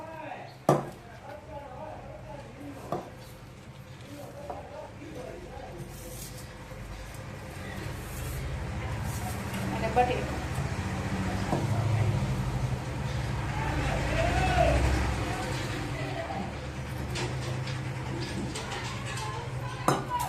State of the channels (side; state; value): both; identical; correlation 1.00